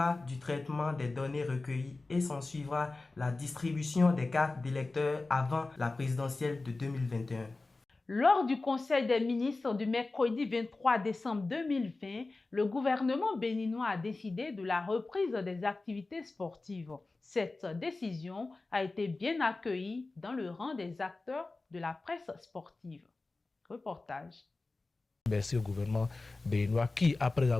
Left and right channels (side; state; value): right; quieter; 3.4 dB